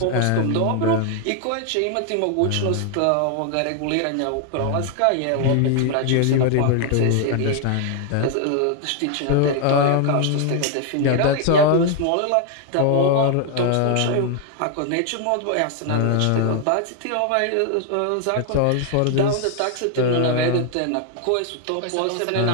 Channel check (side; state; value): both; different; correlation 0.00